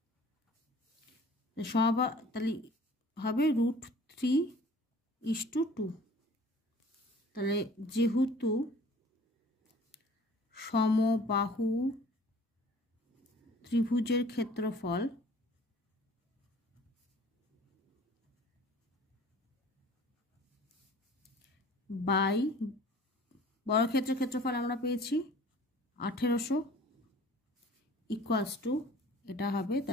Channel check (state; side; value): normal; both; correlation 0.49